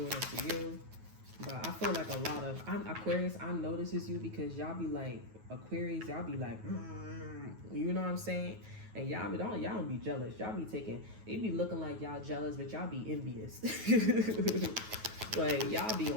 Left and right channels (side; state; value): left; late; 9.3 ms